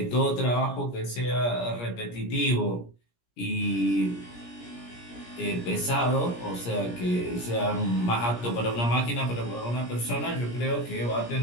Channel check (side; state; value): right; late; 17 ms